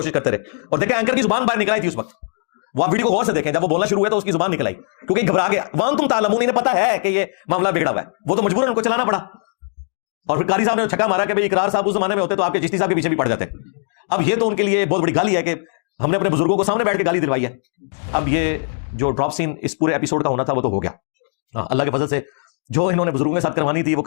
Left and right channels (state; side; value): silent; right; 62 dB below the other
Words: کرتے رہے. اور دیکھیں اینکر کی زبان باہر نکل آئی تھی اس وقت. وہ آپ ویڈیو کو غور سے دیکھیں، جب وہ بولنا شروع ہوا تو اس کی زبان نکل آئی کیونکہ گھبرا گیا. وان تم تعلمون، انہیں پتا ہے کہ یہ معاملہ بگڑا ہوا ہے، وہ تو مجبور ان کو چلانا پڑا. اور پھر قاری صاحب نے چھکا مارا کہ بھائی اقرار صاحب اس زمانے میں ہوتے تو آپ کے چشتی صاحب کے پیچھے بھی پڑ جاتے. اب یہ تو ان کے لیے بہت بڑی گالی ہے کہ ہم نے اپنے بزرگوں کو سامنے بیٹھ کے گالی دلوائی ہے. اب یہ جو ڈراپ سین اس پورے ایپیسوڈ کا ہونا تھا وہ تو ہو گیا اللہ کے فضل سے. جو انہوں نے بزرگوں کے ساتھ کروانی تھی وہ